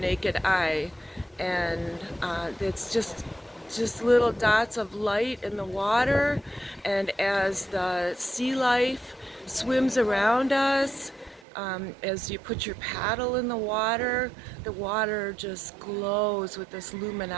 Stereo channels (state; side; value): drops out; left; at 11.5 s